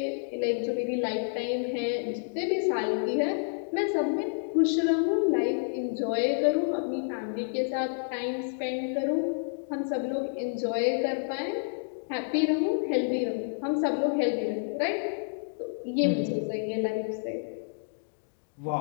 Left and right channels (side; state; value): right; silent; digital silence